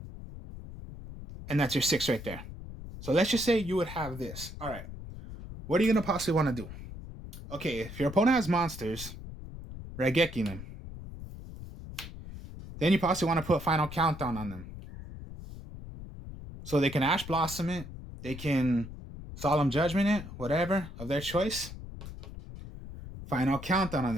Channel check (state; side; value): noise; left; rumble, 12 dB below the sound